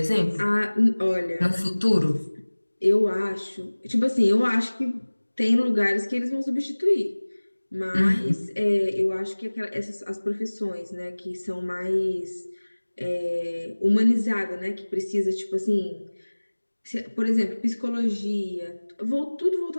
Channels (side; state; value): both; inverted; correlation -1.00